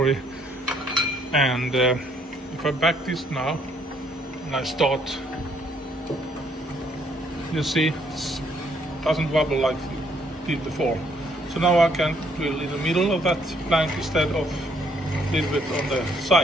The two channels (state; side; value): normal; both; correlation 0.68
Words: And if I back this now and I start, you see it doesn't wobble like it did before. So now I can drill in the middle of that plank instead of a little bit on the